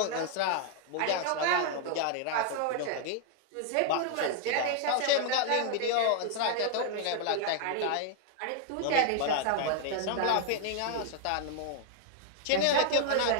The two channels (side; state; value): both; different; correlation 0.00